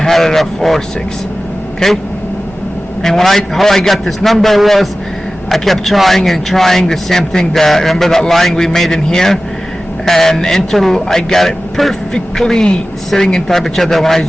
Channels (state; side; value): normal; both; correlation 0.96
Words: had it at 4.6, okay? And how I got this number was I kept trying and trying the same thing. Remember that line we made in here? And until I got it perfectly sitting in top of each other when I